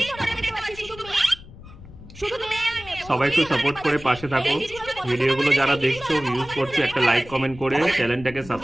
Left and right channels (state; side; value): noise; left; rumble, 18 dB below the sound